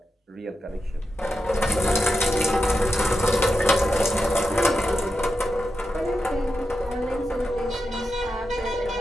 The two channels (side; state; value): both; normal; correlation 0.89